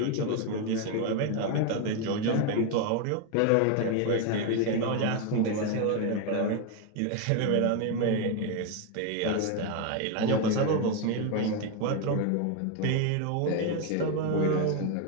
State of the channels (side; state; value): both; different; correlation 0.02